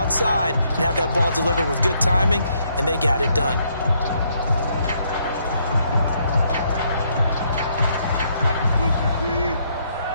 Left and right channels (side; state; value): both; inverted; correlation -0.72